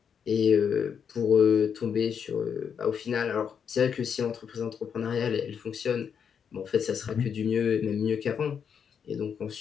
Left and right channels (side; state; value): right; quieter; 7.3 dB